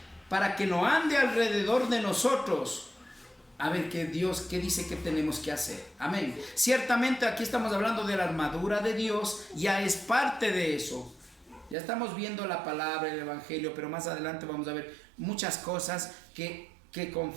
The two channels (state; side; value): drops out; left; at 11.8 s